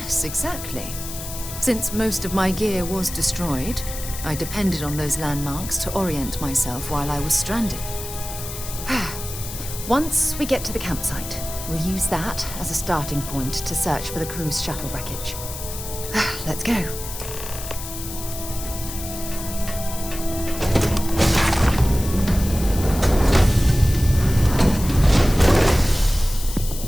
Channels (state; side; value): noise; left; hiss, 10 dB below the sound